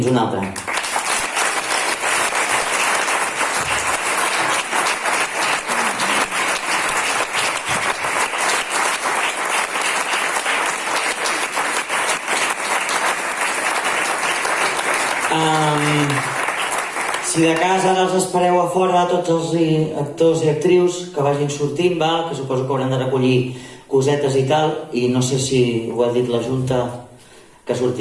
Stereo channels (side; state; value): both; identical; correlation 1.00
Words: una altra. Si de casa ara els espereu a fora tots els actors i actrius que vagin sortint, val? Que suposo que hauran de recollir cosetes i tal, i no sé si ho ha dit la Junta, que